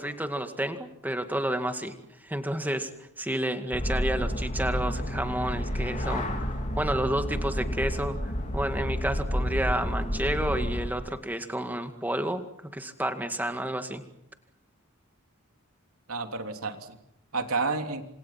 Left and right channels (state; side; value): normal; both; correlation 0.72